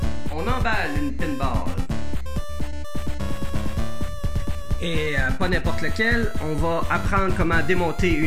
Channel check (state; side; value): identical; both; correlation 1.00